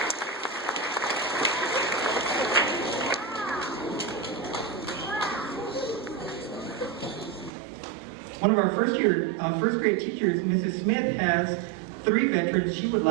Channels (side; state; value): left; drops out; at 7.5 s